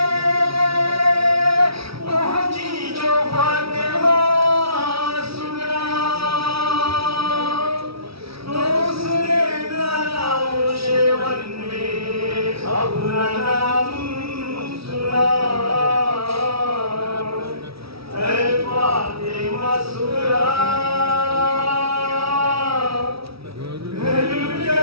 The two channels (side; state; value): left; late; 0.76 ms